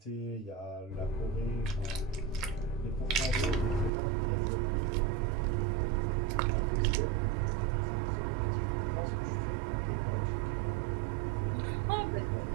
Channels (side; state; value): left; drops out; at 3.9 s